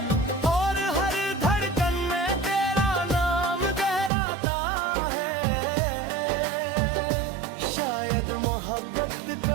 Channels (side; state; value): left; drops out; at 4.1 s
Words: और हर धड़कन में तेरा नाम गहराता है। शायद मोहब्बत